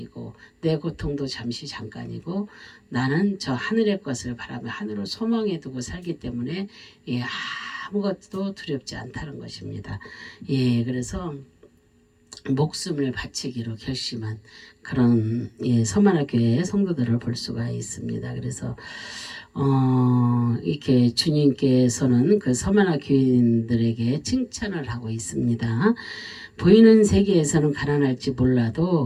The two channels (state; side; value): identical; both; correlation 1.00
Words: 내 고통도 잠시 잠깐이고 나는 저 하늘의 것을 바라며 하늘을 소망해 두고 살기 때문에 예, 아무것도 두렵지 않다는 것입니다. 예, 그래서 목숨을 바치기로 결심한 그런 예, 서머나 교회의 성도들을 볼 수가 있습니다. 그래서 이렇게 주님께서는 그 서머나 교인들에게 칭찬을 하고 있습니다. 보이는 세계에서는 가난할지